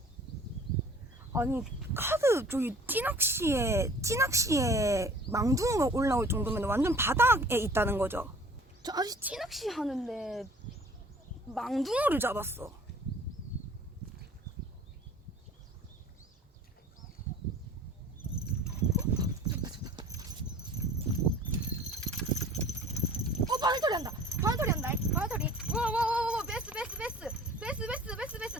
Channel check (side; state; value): both; normal; correlation 0.48